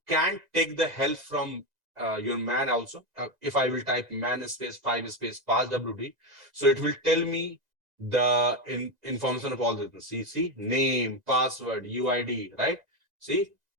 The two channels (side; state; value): left; late; 1.9 ms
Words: can take the help from your man also. If I will type man space 5 space pass WD, so it will tell me the information of all this. See, name, password, UID, right? See,